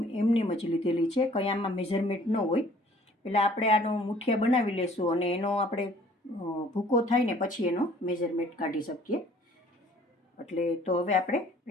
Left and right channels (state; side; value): normal; both; correlation 0.55